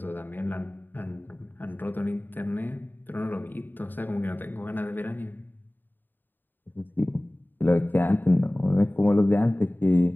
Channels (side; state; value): right; late; 0.091 ms